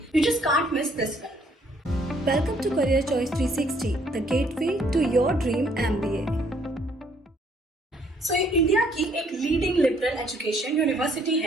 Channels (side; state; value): both; normal; correlation 0.65